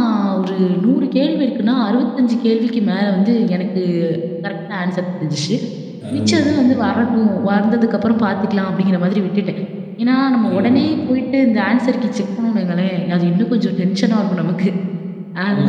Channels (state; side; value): identical; both; correlation 1.00